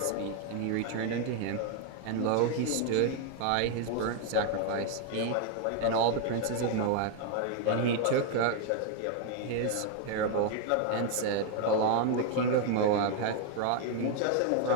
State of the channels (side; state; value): both; different; correlation 0.00